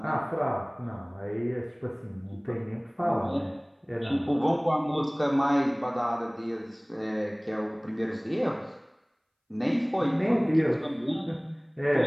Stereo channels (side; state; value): both; identical; correlation 1.00